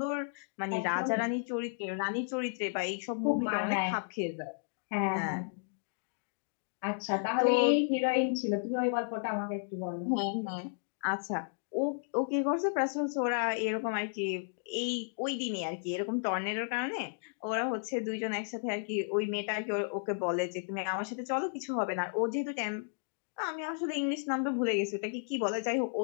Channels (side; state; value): right; silent; digital silence